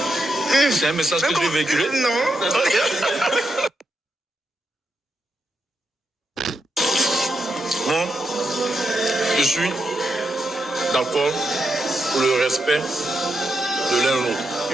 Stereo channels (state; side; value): normal; both; correlation 0.85